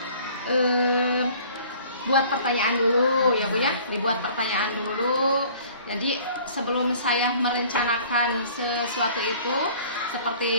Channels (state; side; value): inverted; both; correlation -0.51